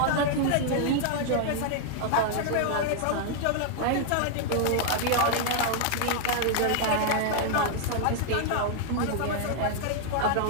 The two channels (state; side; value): different; both; correlation 0.00